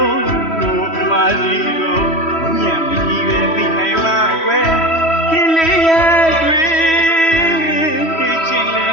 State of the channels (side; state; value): right; late; 3.1 ms